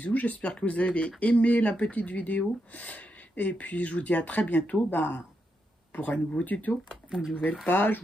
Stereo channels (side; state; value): both; normal; correlation 0.83